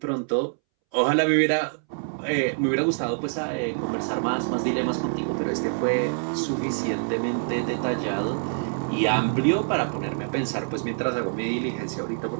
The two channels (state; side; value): silent; left; 61 dB below the other